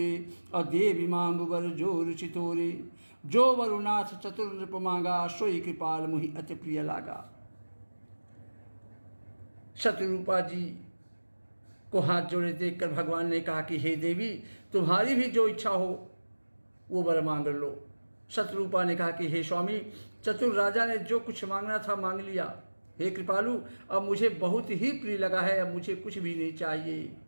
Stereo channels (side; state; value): both; inverted; correlation -1.00